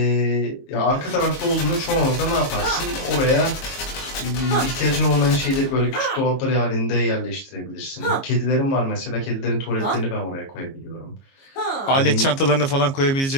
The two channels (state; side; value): late; right; 22 ms